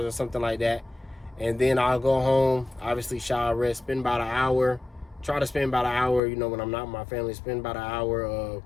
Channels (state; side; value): drops out; right; at 6.2 s